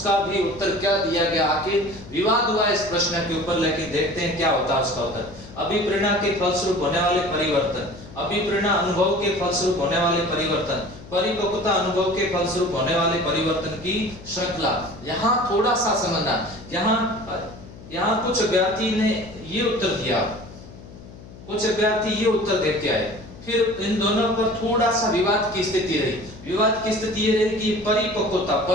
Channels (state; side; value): noise; left; hum, 18 dB below the sound